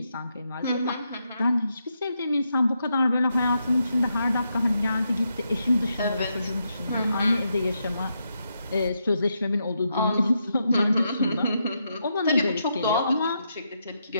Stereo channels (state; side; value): inverted; both; correlation -0.82